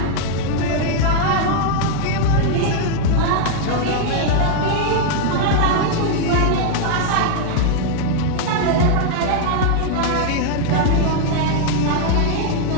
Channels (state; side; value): different; both; correlation 0.00